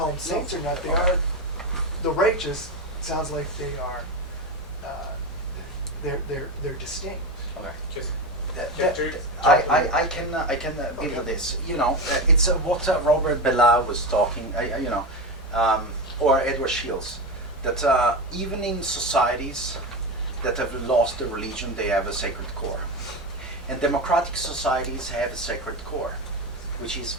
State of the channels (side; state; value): both; normal; correlation 0.19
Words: them saints or not, they are the righteous. Sounds like they are. They're distinct. Okay. I can build on this. It's what Robert Bellah was talking. Or Edward Shields, that even in societies that have lost their religion, they have a sacred core. And democratic societies have a sacred core, which is